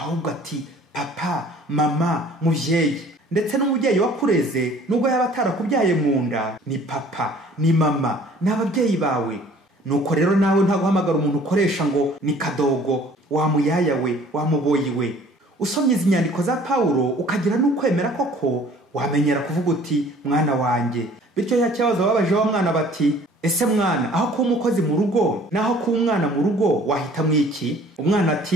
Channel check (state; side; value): normal; both; correlation 0.53